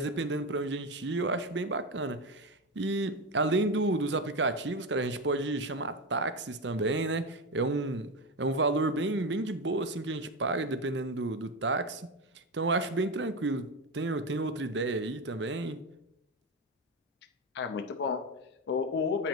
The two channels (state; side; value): normal; both; correlation 0.16